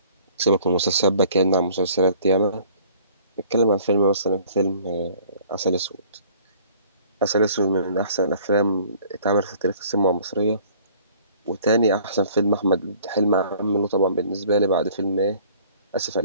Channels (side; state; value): both; inverted; correlation -0.53